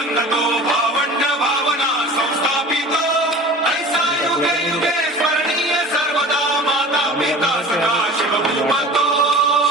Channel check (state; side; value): normal; both; correlation 0.39